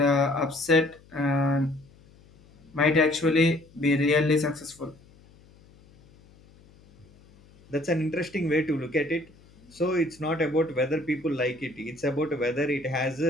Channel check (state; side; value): noise; left; hum, 27 dB below the sound